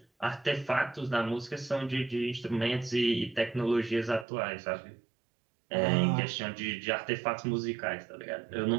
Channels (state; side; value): drops out; left; at 4.2 s